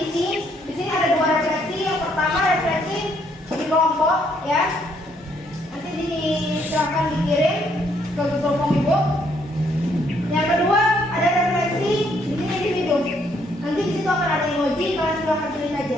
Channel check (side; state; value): both; normal; correlation 0.70